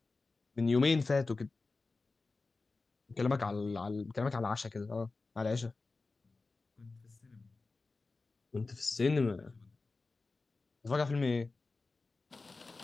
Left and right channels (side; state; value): right; quieter; 3.7 dB